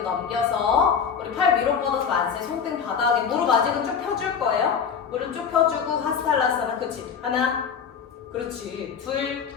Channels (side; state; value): right; quieter; 6.9 dB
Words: 넘겨서 우리 팔 위로 뻗어서 만세. 손등 바닥에 무릎 아직은 쭉 펴줄 거예요. 무릎 쭉 펴주고 하스탈라사나. 그렇지. 하나, 그렇지. 둘,